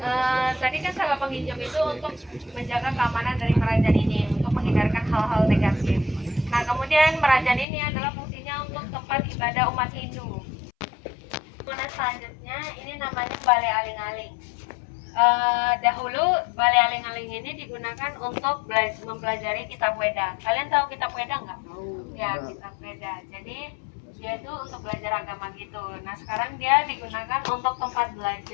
tadi kan sangga penginjem itu untuk menjaga keamanan dari merajan ini, untuk menghindarkan hal-hal negatif. Nah, kemudian merajan ini adalah fungsinya untuk tempat ibadah umat Hindu. Kemudian selanjutnya ini namanya Balai Aling-Aling. Dahulu Balai Aling-Aling ini digunakan untuk mempelajari kitab Weda. Kalian tahu kitab Weda nggak? Ya, kitab Weda. Jadi dia itu untuk belajar agama gitu. Nah, sekarang dia digunakan untuk tempat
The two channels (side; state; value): right; drops out; at 7.7 s